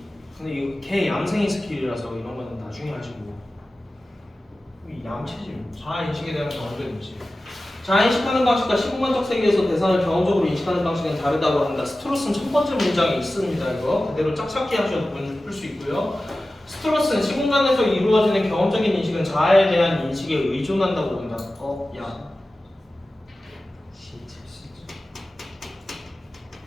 근데 이거 걔 얌생이 스킬이라서 이런 거는 나중에 하시고. 이 얌체지. 자아인식에 대한 경험적인지. 자아인식하는 방식과 시공간적 세계에서 대상을 경험적으로 인식하는 방식은 다르다고 한다. 스트로스는 첫 번째 문장에 있습니다. 이거 그대로 짝찾기 하셔도 풀 수 있고요. 스트로스는 시공간에서 이루어지는 경험적인 인식은 자아에 대한 인식에 의존한다고 본다. 야.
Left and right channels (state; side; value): normal; both; correlation 0.95